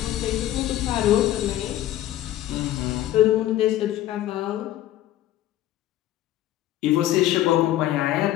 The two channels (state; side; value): quieter; right; 13.6 dB